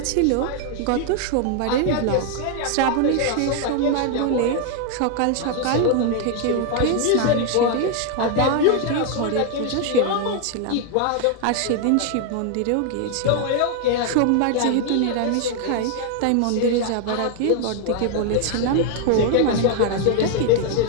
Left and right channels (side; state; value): both; different; correlation 0.00